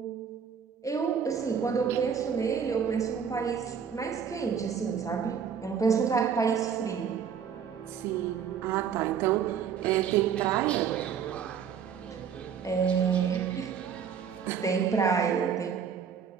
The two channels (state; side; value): quieter; left; 7.4 dB